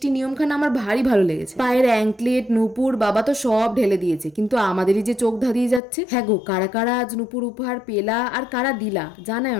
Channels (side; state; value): right; drops out; at 5.8 s